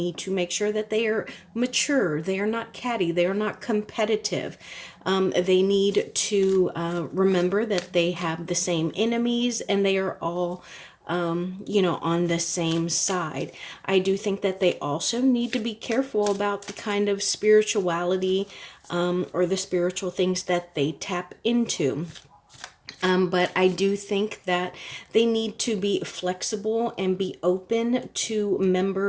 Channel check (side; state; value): both; identical; correlation 1.00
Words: to make sure that they are mature. They are not catty. They are not competitive. They need to remember that they have the same enemies, and they are all on the same side. I do think that they also need to be careful about the kind of spirituality or the spiritual things that they tap into. But I do think that they need to be flexible and be open to